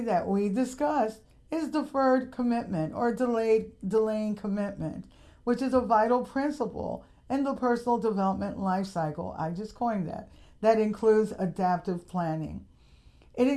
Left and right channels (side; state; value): both; identical; correlation 1.00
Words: we discussed is deferred commitment or delaying commitment, which is a vital principle in the personal development life cycle. I just coined that. That includes adaptive planning. It